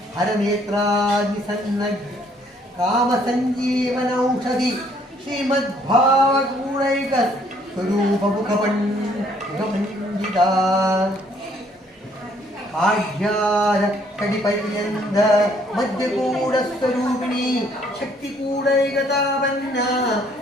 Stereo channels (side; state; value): both; normal; correlation 0.64